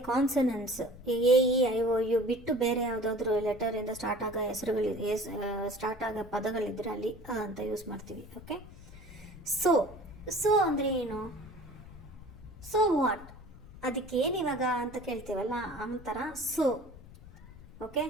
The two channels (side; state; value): left; noise; rumble, 19 dB below the sound